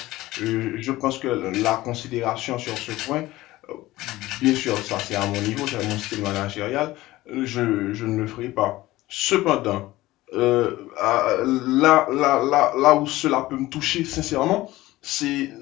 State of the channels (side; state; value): right; quieter; 17.5 dB